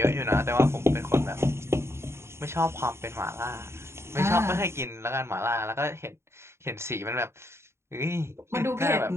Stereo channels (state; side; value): late; left; 0.13 ms